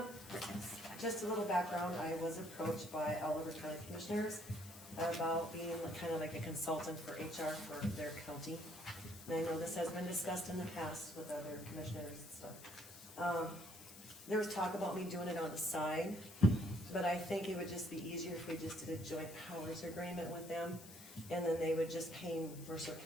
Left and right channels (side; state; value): left; noise; hiss, 16 dB below the sound